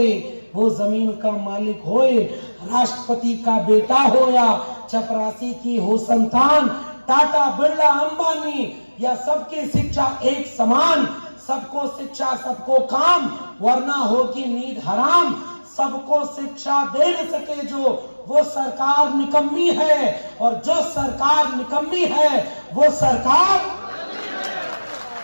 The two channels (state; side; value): inverted; both; correlation -1.00